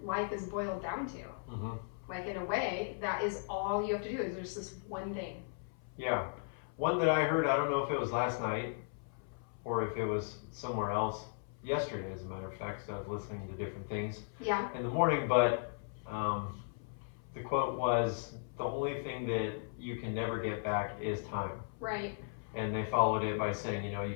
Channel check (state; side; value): silent; right; 53 dB below the other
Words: life is boiled down to. Like in a way, that is all you have to do is there's this one thing. Yeah. One that I heard, I don't know if it was last night or if it was somewhere else yesterday, as a matter of fact, because I was listening to different things in the morning, but the quote was, the only thing that you can never get back is time. Right. And they followed it by saying, you